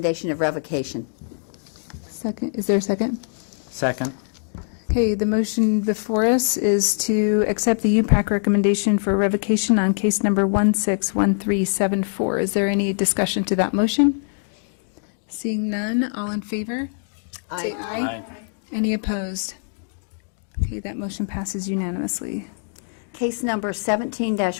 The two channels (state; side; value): silent; right; digital silence